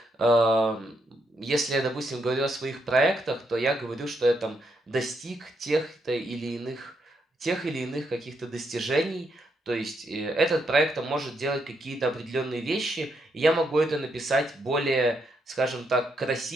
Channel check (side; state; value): both; normal; correlation 0.78